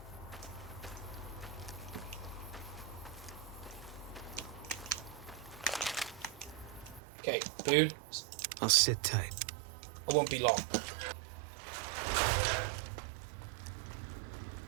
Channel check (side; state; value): left; drops out; at 7.0 s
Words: Okay, Blue, I'll sit tight. I won't be long.